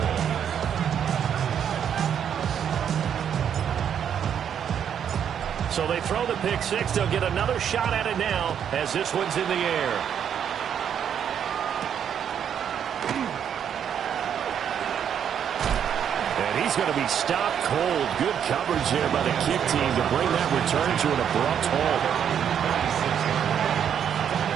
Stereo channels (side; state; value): left; quieter; 8.6 dB